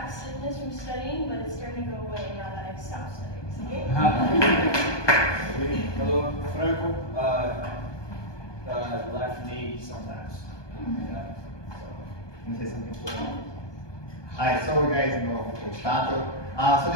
stiffness from studying, but it's starting to go away now that I've stopped studying. Hello, Franco. Left knee sometimes. Can I say something for you? Hi, so you guys know Coach Tato. So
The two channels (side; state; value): right; late; 1.2 ms